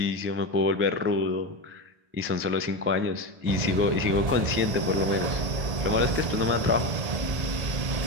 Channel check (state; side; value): late; left; 1.2 ms